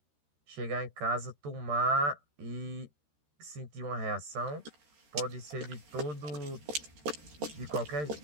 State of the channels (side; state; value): left; late; 13 ms